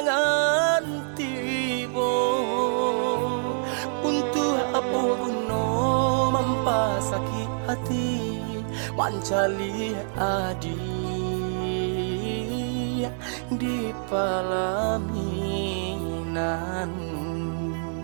tibo. Untuk apa guna mempasakit hati mencari adik di pelaminan.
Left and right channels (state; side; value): silent; left; 61 dB below the other